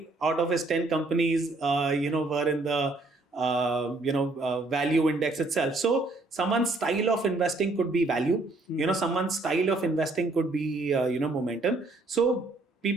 out of his 10 companies, were in the value index itself. So someone's style of investing could be value. Someone's style of investing could be momentum. So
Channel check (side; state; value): left; quieter; 3.1 dB